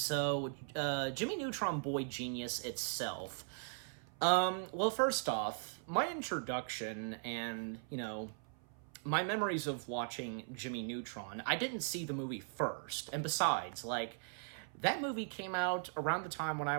Jimmy Neutron, Boy Genius itself. Well, first off, my introduction and, my memories of watching Jimmy Neutron, I didn't see the movie first. And besides, that movie came out around the time when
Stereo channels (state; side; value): silent; left; 52 dB below the other